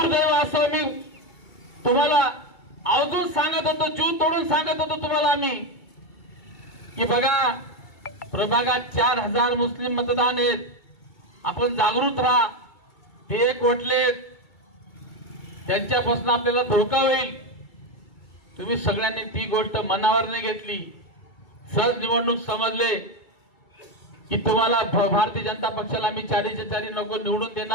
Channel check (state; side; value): late; right; 2.3 ms